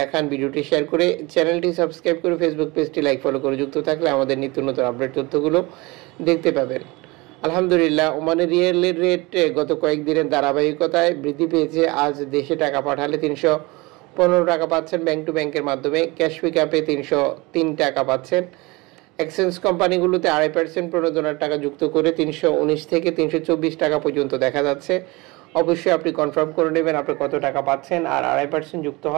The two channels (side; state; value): left; quieter; 23.8 dB